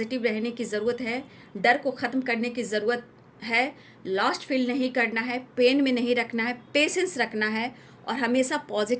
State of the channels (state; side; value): identical; both; correlation 1.00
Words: रहने की ज़रूरत है, डर को ख़त्म करने की ज़रूरत है, लॉस्ट फील नहीं करना है, पेन में नहीं रखना है, पेशेंस रखना है और हमेशा